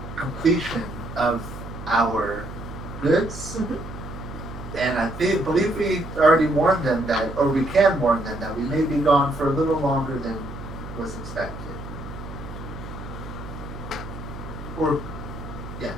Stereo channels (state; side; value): noise; right; hum, 11 dB below the sound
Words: completion of our goods. Mhm. And I believe we already warned them that, or we can warn them that we may be gone for a little longer than was expected. Or,